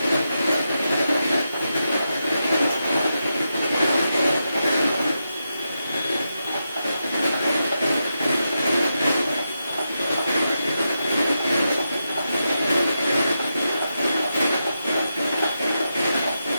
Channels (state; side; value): inverted; both; correlation -0.87